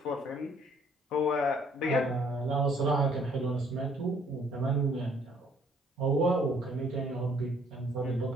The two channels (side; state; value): both; normal; correlation 0.62